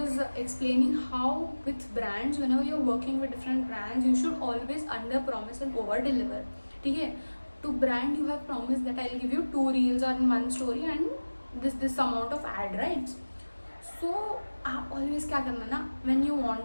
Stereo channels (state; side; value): inverted; both; correlation -1.00